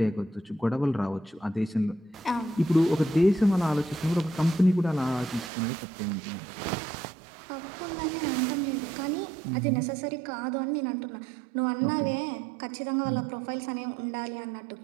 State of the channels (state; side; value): drops out; left; at 5.5 s